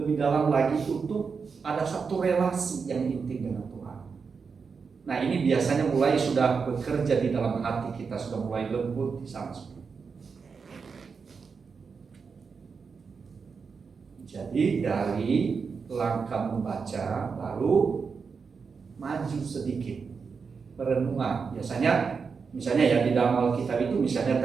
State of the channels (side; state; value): left; quieter; 5.4 dB